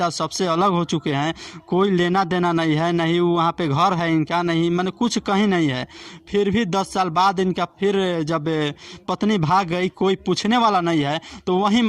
सबसे अलग हो चुके हैं, कोई लेना देना नहीं है, नहीं वहाँ पे घर है इनका, नहीं मैंने कुछ कहीं नहीं है। फिर भी 10 साल बाद इनका फिर जब पत्नी भाग गई, कोई पूछने वाला नहीं है, तो वहीं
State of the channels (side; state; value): both; identical; correlation 1.00